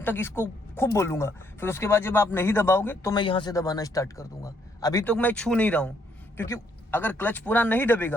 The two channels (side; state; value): both; normal; correlation 0.71